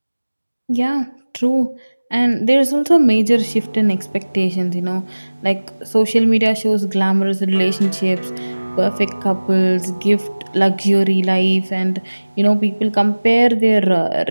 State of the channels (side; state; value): both; inverted; correlation -1.00